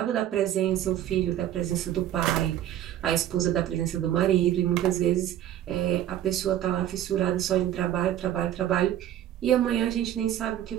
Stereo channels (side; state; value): left; quieter; 11.8 dB